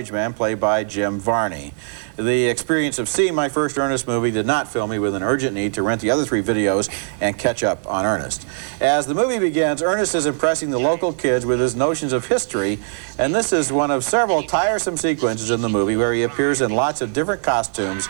man played by Jim Varney. The experience of seeing my first Ernest movie did not fill me with an urgent need to rent the other 3 videos and catch up on Ernest. As the movie begins, Ernest is impressing the local kids with his notions of history, and this is one of several tiresome sequences in the movie where he appears in lots of different costumes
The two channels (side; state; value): left; silent; digital silence